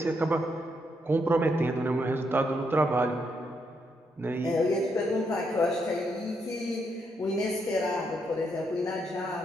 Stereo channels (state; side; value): normal; both; correlation 0.78